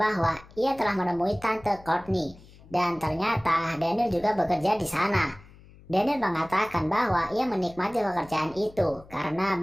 bahwa ia telah menemui Tante Courtney, dan ternyata Daniel juga bekerja di sana. Daniel mengatakan bahwa ia menikmati pekerjaan itu karena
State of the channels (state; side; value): noise; left; hum, 23 dB below the sound